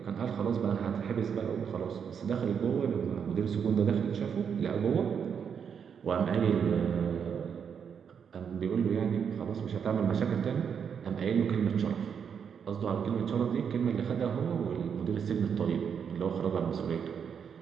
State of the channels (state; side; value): quieter; left; 7.2 dB